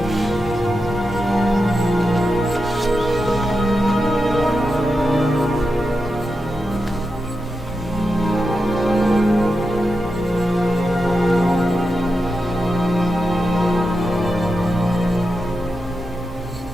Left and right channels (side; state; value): both; normal; correlation 0.88